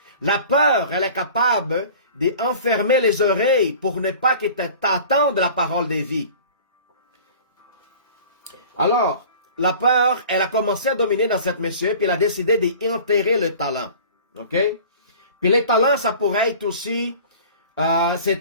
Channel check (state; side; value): inverted; both; correlation -0.43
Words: La peur, elle est capable d'enfermer les oreilles pour ne pas que t'attendes la parole de vie. Alors, la peur, elle a commencé à dominer dans cette monsieur, puis elle a décidé d'enterrer le talent. OK? Puis les talents, ça pourrait être aussi,